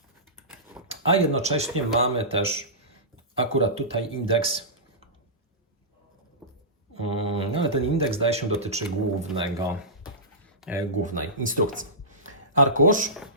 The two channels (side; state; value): both; normal; correlation -0.19